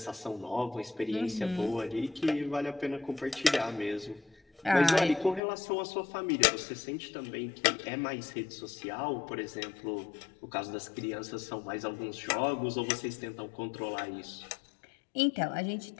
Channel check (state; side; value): drops out; right; at 5.4 s